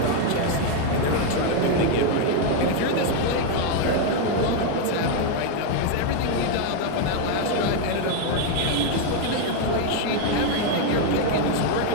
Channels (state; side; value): different; both; correlation 0.01